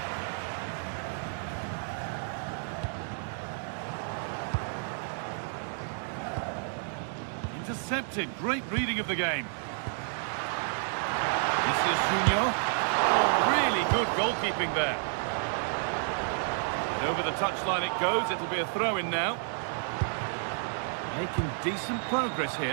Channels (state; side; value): silent; left; 57 dB below the other